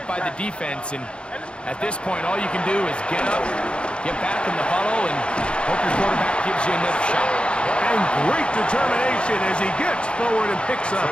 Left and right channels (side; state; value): right; late; 0.056 ms